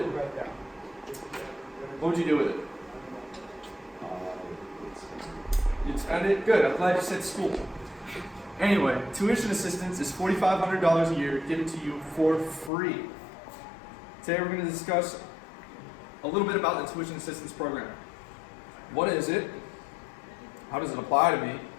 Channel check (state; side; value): drops out; right; at 12.7 s